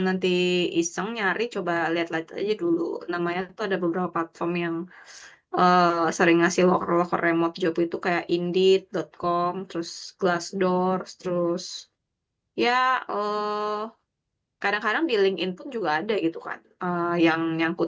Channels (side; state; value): both; identical; correlation 1.00